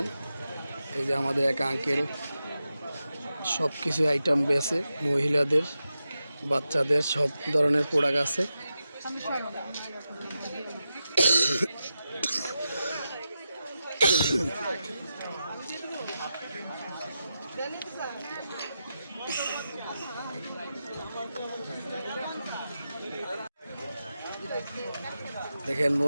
এই যে আমাদের এক আঙ্কেল সব কিছু আইটেম বেছে, মহিলাদের বাচ্চাদের সব ধরনের প্রোডাক্ট আছে। দেখেন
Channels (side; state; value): both; inverted; correlation -0.90